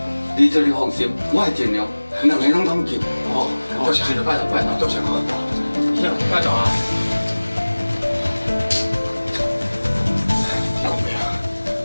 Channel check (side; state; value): both; inverted; correlation -1.00